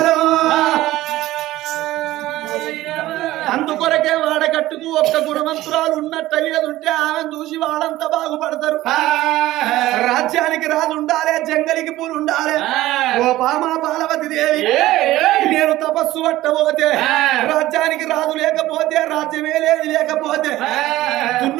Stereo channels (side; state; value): left; quieter; 16.2 dB